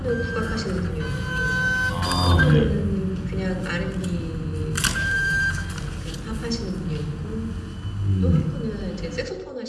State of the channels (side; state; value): both; identical; correlation 1.00